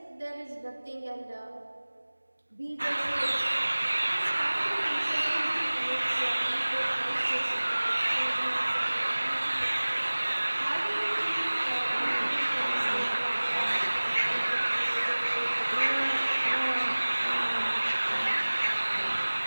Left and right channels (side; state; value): both; inverted; correlation -1.00